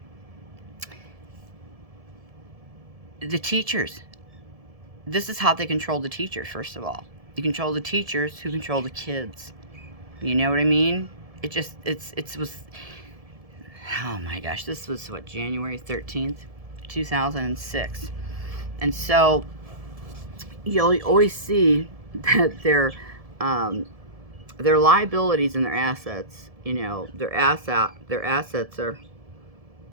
the teachers, this is how they control the teachers. First of all, you control the teachers who control the kids. You know what I mean? It was, oh my gosh, this was what, January 13th, 2006. And so you'll always see that their liabilities and their assets, their assets are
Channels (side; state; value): left; late; 1.7 ms